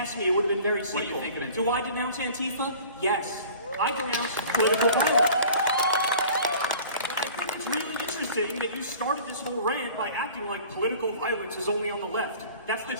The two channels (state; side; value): inverted; both; correlation -0.46